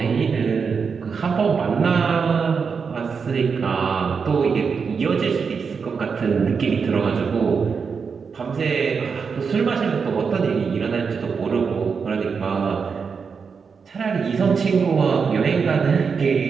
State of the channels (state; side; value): quieter; left; 5.7 dB